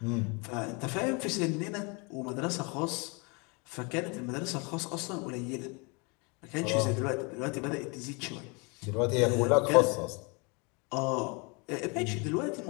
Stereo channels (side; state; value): right; quieter; 31.1 dB